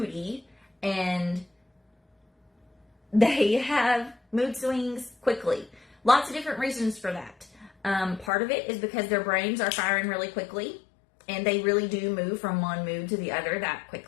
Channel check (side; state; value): right; drops out; at 8.3 s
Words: and they have mood swings quickly. Lots of different reasons for that. Part of it is because their brains are firing really quickly, and they really do move from one mood to the other that